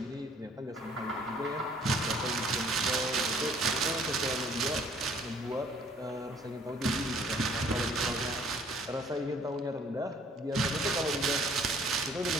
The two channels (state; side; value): normal; both; correlation 0.58